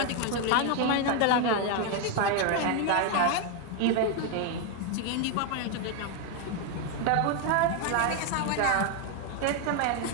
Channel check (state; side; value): different; both; correlation 0.01